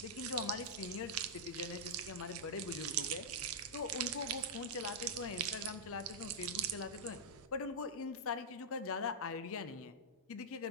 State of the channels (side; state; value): both; normal; correlation -0.07